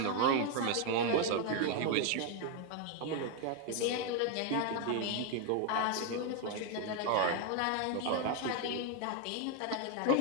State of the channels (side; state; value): both; different; correlation 0.01